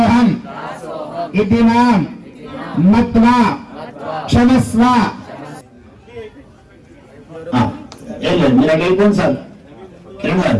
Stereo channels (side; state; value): both; identical; correlation 1.00